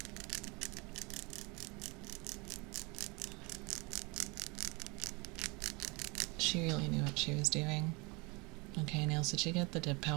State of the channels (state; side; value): quieter; left; 27.8 dB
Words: She really knew what she was doing. Okay, Nails, did you get the dip